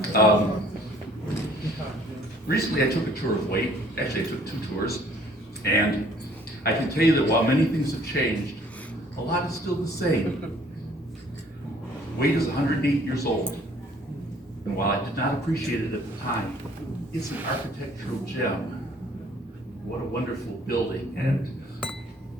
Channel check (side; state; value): both; normal; correlation 0.58